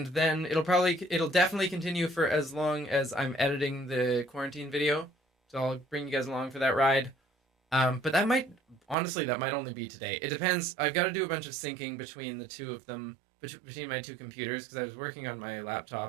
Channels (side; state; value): left; drops out; at 9.0 s